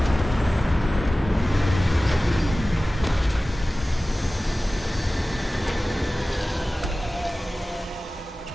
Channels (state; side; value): normal; both; correlation 0.97